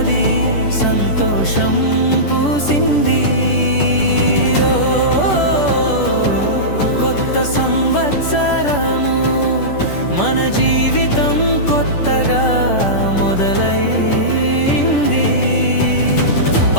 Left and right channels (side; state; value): right; late; 10 ms